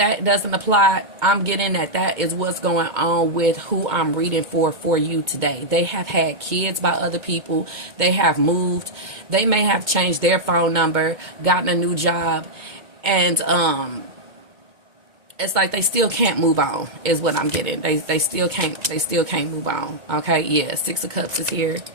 doesn't apply, I'm getting that is what's going on with who I'm reading for you today. They have had kids by other people. They have moved. They may have changed their phone number, gotten a new job. And it's like they still can't move on is what I'm getting. They still can't move on. Okay, yeah, Six of Cups is here.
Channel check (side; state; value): left; late; 2.2 ms